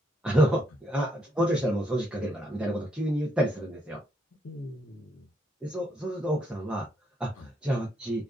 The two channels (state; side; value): normal; both; correlation 0.74